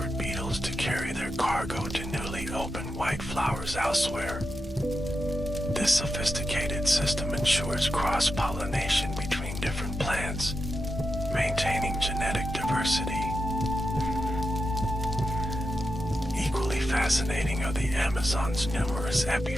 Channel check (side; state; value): both; normal; correlation 0.88